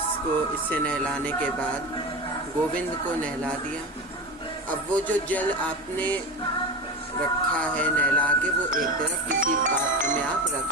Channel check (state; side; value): normal; both; correlation 0.25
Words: इससे नहलाने के बाद गोविंद को नहला दिया। अब वो जो जल आपने रखा है नहला के, वो एक तरफ किसी पात्र में आप